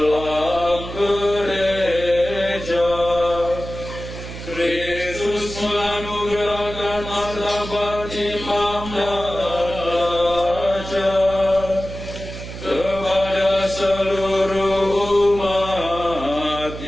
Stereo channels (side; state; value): right; noise; hum, 10 dB below the sound